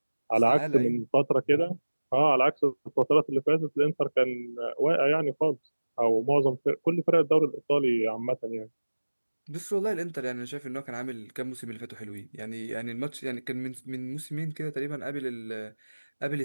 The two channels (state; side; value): inverted; both; correlation -1.00